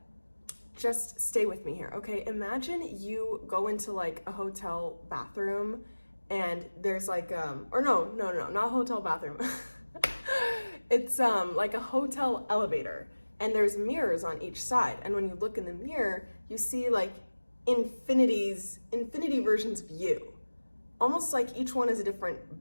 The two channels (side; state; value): both; inverted; correlation -1.00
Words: just stay with me here, okay? Imagine you go into like a hotel bathroom and there's like, or no, not hotel bathroom. It's like a hotel elevator and there's mirrors on each side. And when you look in the mirror, you see like infinity versions of you. Almost like each one is a